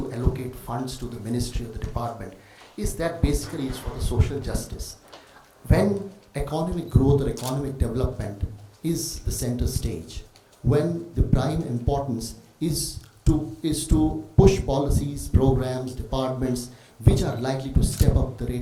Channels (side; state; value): both; identical; correlation 1.00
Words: allocate funds to the ministry or the department is that basically it's for the social justice. When economic growth or economic development is the center stage, when the prime importance is to push policies, programs, departments which are likely to step up the